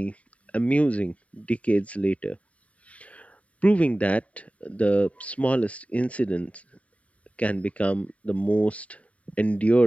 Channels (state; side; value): late; right; 0.067 ms